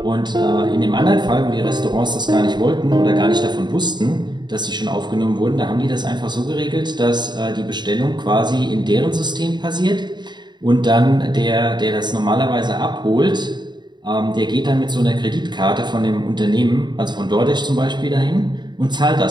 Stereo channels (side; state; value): left; late; 0.21 ms